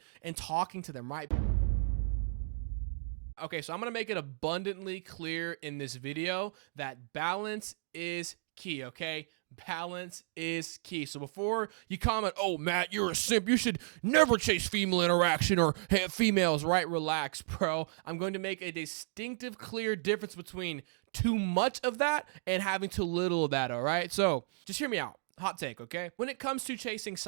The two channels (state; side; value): silent; left; digital silence